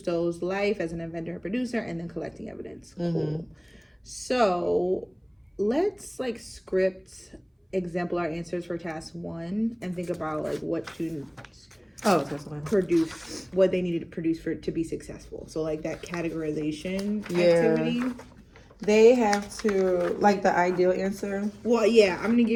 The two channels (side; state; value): both; identical; correlation 1.00